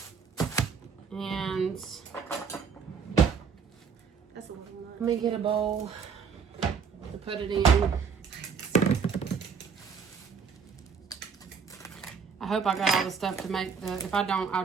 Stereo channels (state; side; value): quieter; left; 6.0 dB